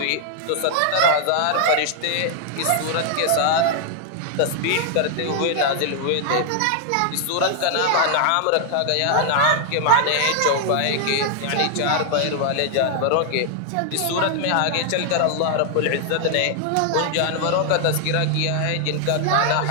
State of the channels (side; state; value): both; different; correlation 0.00